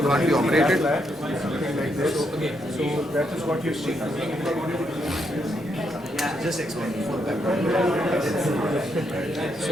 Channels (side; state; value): both; normal; correlation 0.78